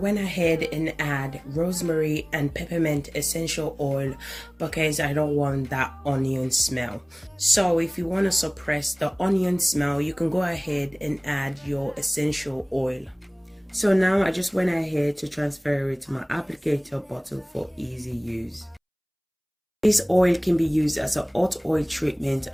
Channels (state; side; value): identical; both; correlation 1.00